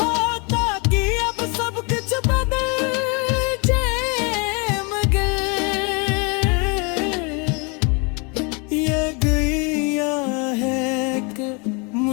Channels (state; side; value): quieter; right; 32.0 dB